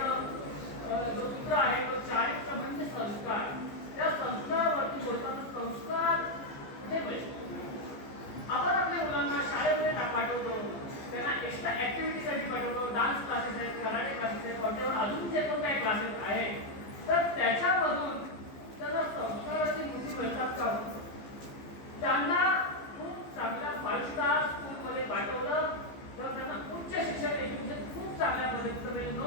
जो सूत्र आहे तो चारित्र्य म्हणजे संस्कार. त्या संस्कारावरती बोलताना संस्कार कुठे मिळतो. आपण आपल्या मुलांना शाळेमध्ये पाठवतो, त्यांना एक्स्ट्रा ऍक्टिव्हिटीसाठी पाठवतो, डान्स क्लासेस आहेत, कराटे क्लासेस आहेत, कोणत्यावर अजून जे पण काही क्लासेस आहेत तर त्याच्यामधून त्यांना संस्काराची मुठी मिळतात का. त्यांना खूप चांगल्या 5 स्टार स्कूलमध्ये पाठवलं तर त्यांना उच्च शिक्षण एज्युकेशन खूप चांगल्या पद्धतीचं मिळेल, नो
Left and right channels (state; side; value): late; right; 15 ms